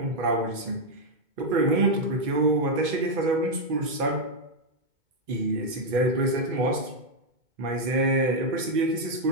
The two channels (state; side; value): late; left; 2.2 ms